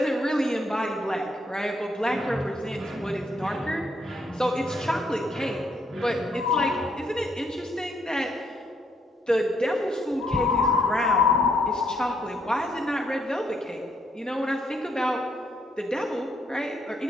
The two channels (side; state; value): both; normal; correlation 0.72